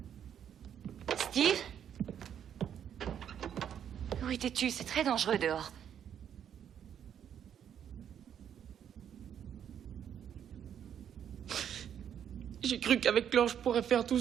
Steve? Où étais-tu? C'est très dangereux dehors. J'ai cru qu'avec Laure, je pourrais faire tout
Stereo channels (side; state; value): left; quieter; 9.1 dB